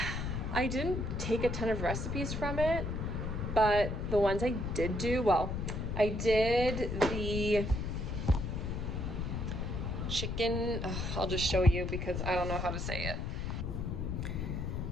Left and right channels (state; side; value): noise; left; rumble, 3 dB below the sound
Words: I didn't take a ton of recipes from it, but the ones I did do, well, I did the chicken, I'll just show you because I don't know how to say it.